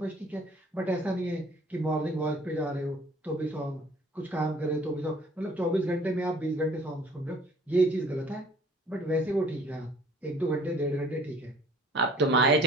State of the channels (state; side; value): normal; both; correlation 0.53